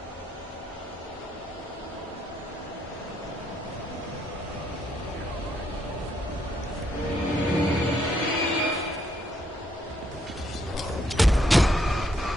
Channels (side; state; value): both; normal; correlation 0.73